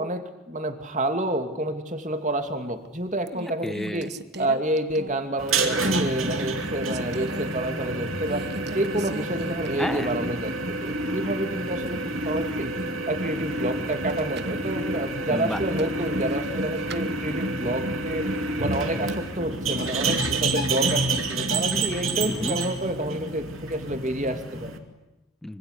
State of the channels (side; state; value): both; normal; correlation 0.36